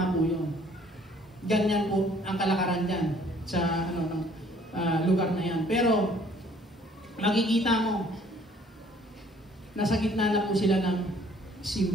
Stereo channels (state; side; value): normal; both; correlation 0.58